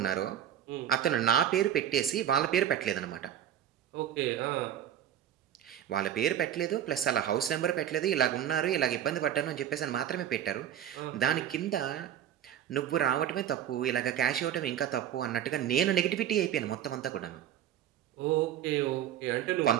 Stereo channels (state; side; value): quieter; left; 10.4 dB